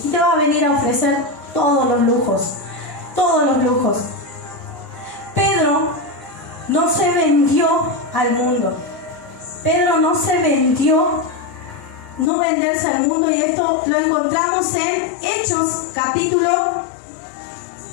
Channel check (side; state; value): right; drops out; at 12.3 s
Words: y te va a venir a ofrecer todos los lujos. Pedro no se vendió al mundo. Pedro no se vendió, no venderse al mundo, y esto lo encontramos en Hechos capítulo